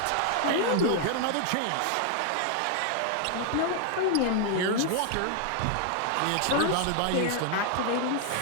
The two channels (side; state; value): both; different; correlation 0.00